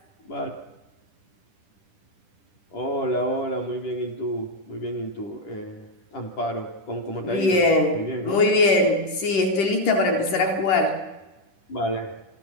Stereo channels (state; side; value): late; right; 10 ms